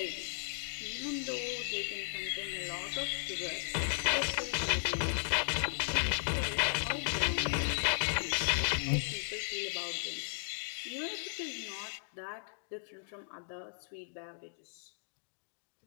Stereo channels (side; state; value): right; silent; digital silence